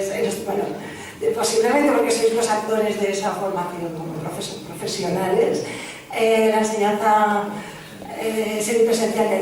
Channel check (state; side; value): identical; both; correlation 1.00